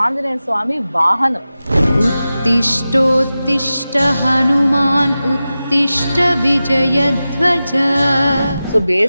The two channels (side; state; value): both; inverted; correlation -0.94